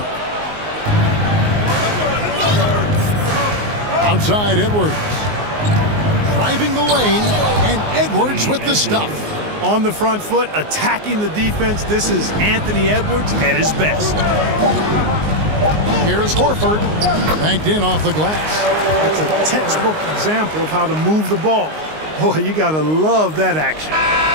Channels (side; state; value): left; late; 19 ms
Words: Outside Edwards. Driving the lane, and Edwards with the stuff. On the front foot, attacking the defense. This is Anthony Edwards at his best. Here's Horford. Banked in off the glass. That's a textbook example of how to move the ball. Boy, you got to love that action.